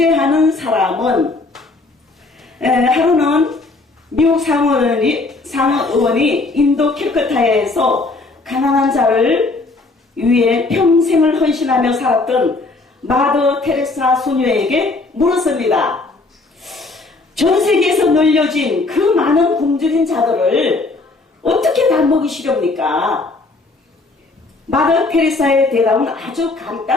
사람은. 하루는 미국 상원의원이 인도 캘커타에서 가난한 자를 위해 평생을 헌신하며 살았던 마더 테레사 소녀에게 물었습니다. 전 세계에서 널려진 그 많은 굶주린 자들을 어떻게 다 먹이시렵니까? 마더 테레사의 대답은 아주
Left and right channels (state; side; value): quieter; right; 3.4 dB